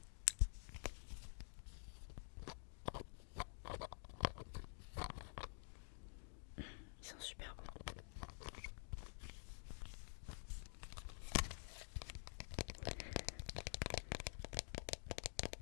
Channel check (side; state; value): right; silent; digital silence